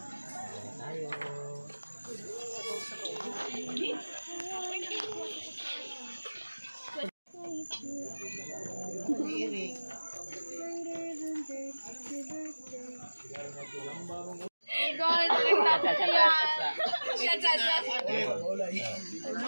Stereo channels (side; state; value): both; inverted; correlation -1.00